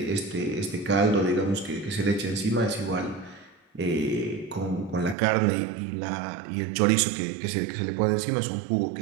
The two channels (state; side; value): drops out; left; at 5.2 s